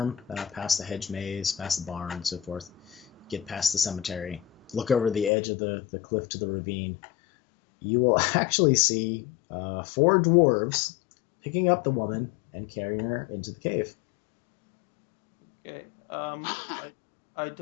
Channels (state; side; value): drops out; right; at 5.3 s